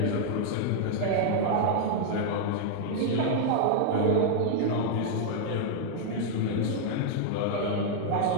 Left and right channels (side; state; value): both; different; correlation -0.01